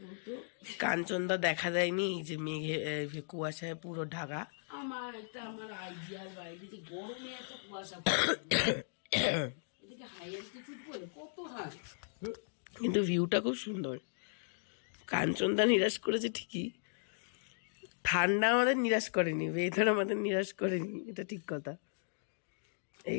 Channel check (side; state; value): right; silent; digital silence